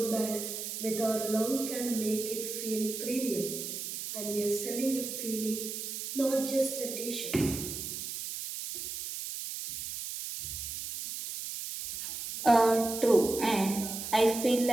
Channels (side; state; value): right; noise; hiss, 6 dB below the sound